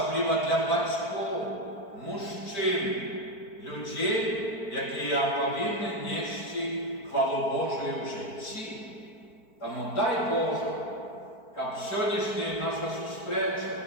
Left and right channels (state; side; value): late; right; 4.5 ms